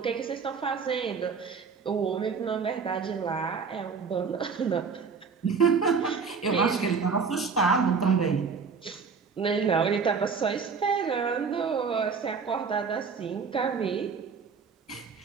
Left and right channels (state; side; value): quieter; left; 5.5 dB